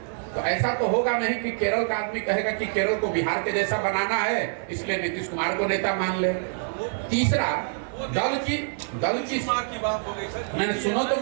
तो ऐसा तो होगा नहीं कि केरल का आदमी कहेगा कि केरल को बिहार के जैसा बनाना है इसलिए नीतीश कुमार को नेता मान ले। तीसरा, दल की बात हो गई सर। मैंने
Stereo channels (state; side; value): silent; left; digital silence